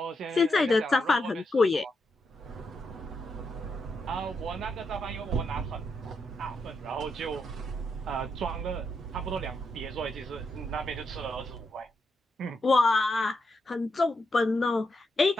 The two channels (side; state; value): both; normal; correlation 0.82